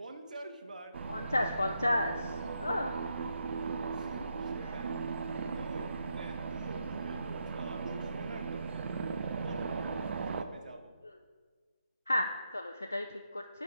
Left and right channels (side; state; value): both; inverted; correlation -0.80